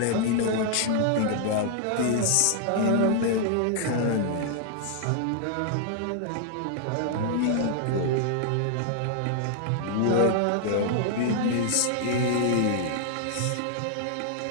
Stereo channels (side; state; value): both; different; correlation 0.00